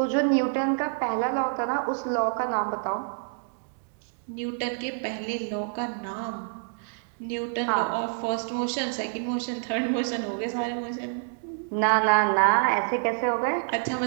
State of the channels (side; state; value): left; silent; digital silence